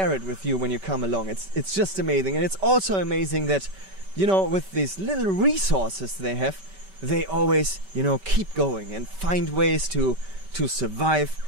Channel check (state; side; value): late; left; 5.2 ms